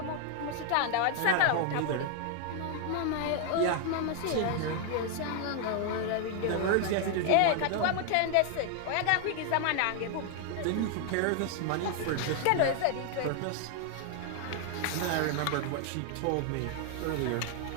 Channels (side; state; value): both; different; correlation 0.00